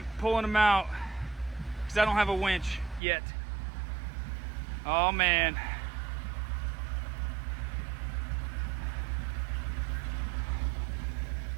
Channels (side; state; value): left; drops out; at 3.0 s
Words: pulling them out because I don't have a winch yet. Oh man.